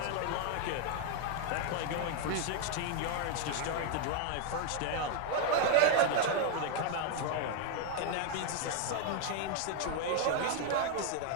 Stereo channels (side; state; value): both; different; correlation 0.00